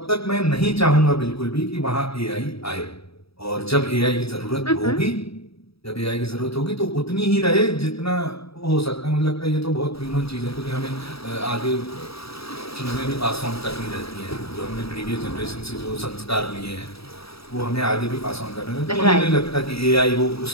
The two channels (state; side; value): late; right; 0.77 ms